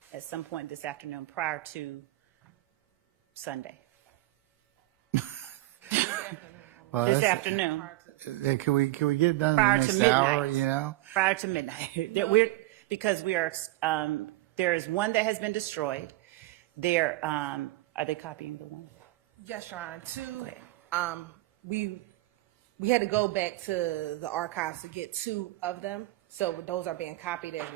at some point this afternoon prior to Sunday. Well, This afternoon. Can we get it done in Prior the to next midnight. hour? You know. Prior to midnight. Because we are, there is one that has been destroyed. There, are they copying the one? Yes, Your Honor. Go ahead. We had to go back to the archives to get 2 of them. So those are being copied as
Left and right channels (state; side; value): quieter; left; 18.4 dB